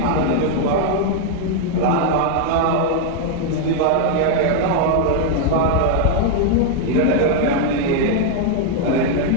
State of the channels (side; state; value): both; different; correlation 0.00